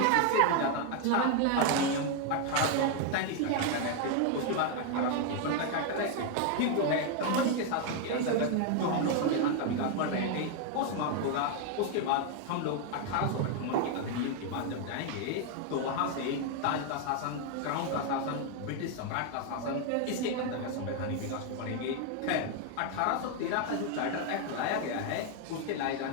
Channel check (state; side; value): different; both; correlation 0.01